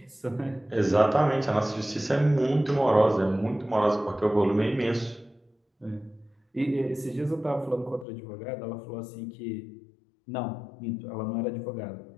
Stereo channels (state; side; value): drops out; right; at 8.1 s